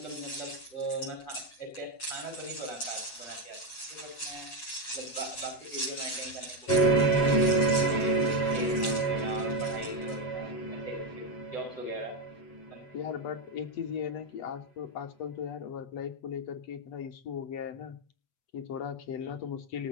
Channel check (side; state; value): right; late; 8.0 ms